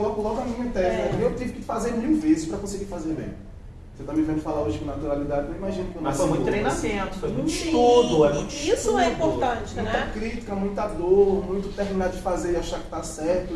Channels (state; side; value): identical; both; correlation 1.00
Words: logo a minha tese. Eu tive que fazer 1000 vezes para conseguir fazer bem. Você está me vendo falar hoje com naturalidade, não imagino que eu não Mas foi muito sei como, treinamento, foi muito estudo, é muito Isso estudo. é importante, muita né? crítica, muita dor, muito terminar de fazer e achar que tá certo